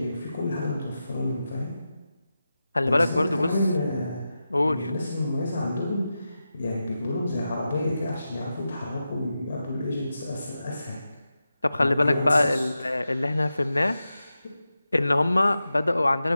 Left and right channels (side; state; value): both; inverted; correlation -0.91